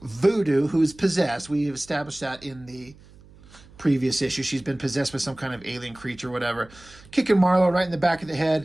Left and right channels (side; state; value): right; noise; hum, 24 dB below the sound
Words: Voodoo, who's possessed. We've established that in the previous issue. She's been possessed with some kind of alien creature, whatever. Kicking Marlowe right in the back of the